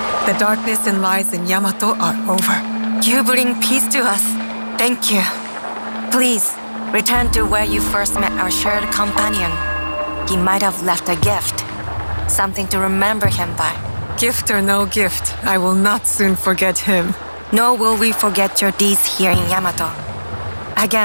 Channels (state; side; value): inverted; both; correlation -1.00